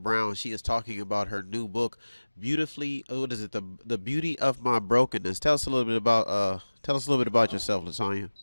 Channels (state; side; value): inverted; both; correlation -1.00